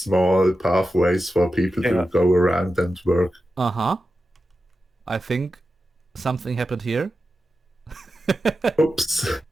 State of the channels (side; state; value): both; normal; correlation 0.91